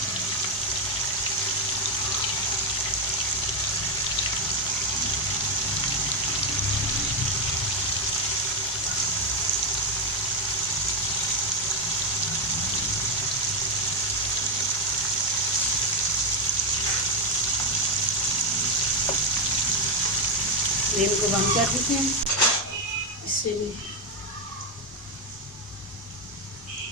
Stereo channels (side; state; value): both; normal; correlation 0.05